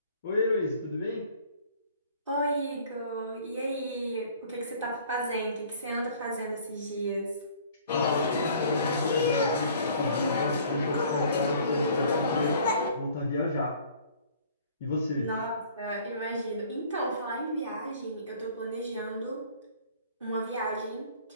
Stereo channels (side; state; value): both; inverted; correlation -0.53